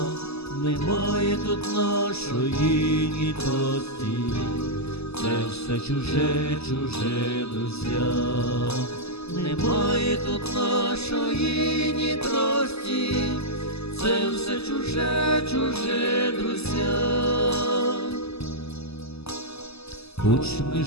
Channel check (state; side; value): late; right; 0.79 ms